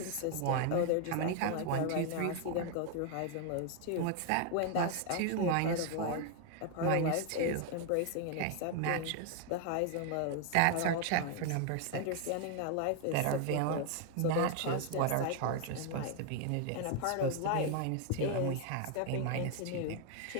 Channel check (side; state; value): both; different; correlation 0.00